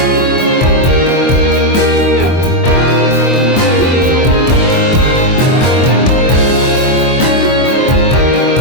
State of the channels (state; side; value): late; right; 23 ms